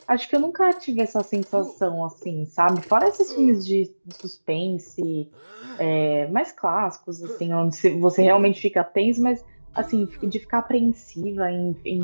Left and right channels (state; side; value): inverted; both; correlation -1.00